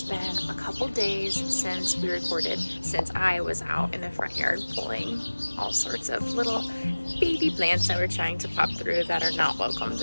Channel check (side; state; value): both; inverted; correlation -1.00